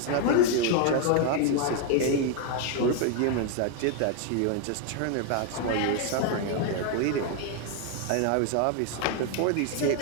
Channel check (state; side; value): different; both; correlation 0.01